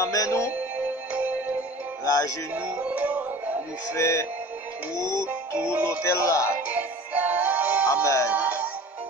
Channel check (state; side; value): normal; both; correlation 0.42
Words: nous, la genou nous fait tout l'hôtel là. Amen.